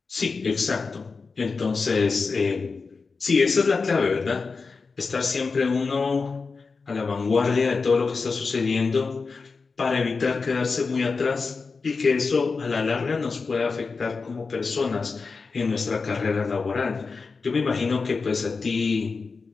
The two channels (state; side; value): quieter; right; 4.5 dB